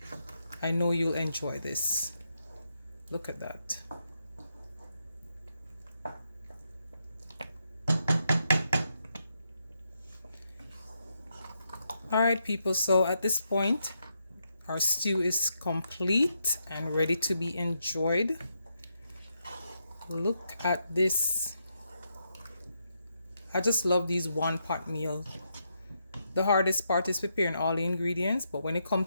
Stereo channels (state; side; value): inverted; both; correlation -0.81